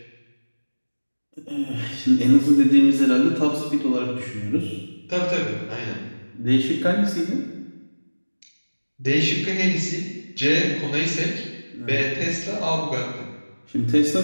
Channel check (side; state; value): both; inverted; correlation -1.00